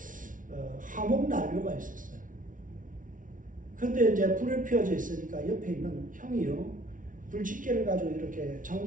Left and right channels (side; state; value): left; late; 0.38 ms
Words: 화목난로가 있었어요. 근데 이제 불을 피워져 있으니까 옆에 있는 형이요, 불집게를 가지고 이렇게